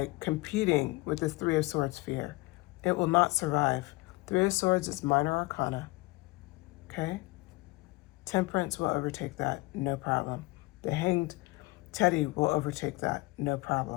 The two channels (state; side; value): quieter; right; 22.9 dB